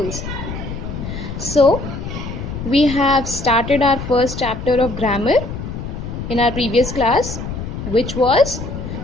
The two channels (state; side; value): noise; left; rumble, 7 dB below the sound